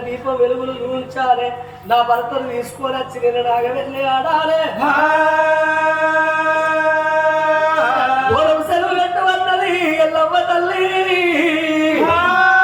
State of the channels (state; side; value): identical; both; correlation 1.00